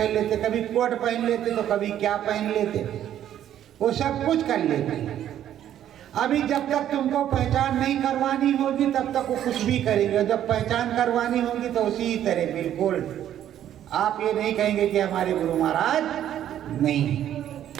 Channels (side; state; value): left; quieter; 11.0 dB